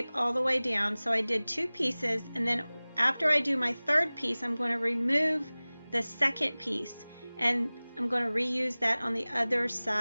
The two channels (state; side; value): inverted; both; correlation -0.99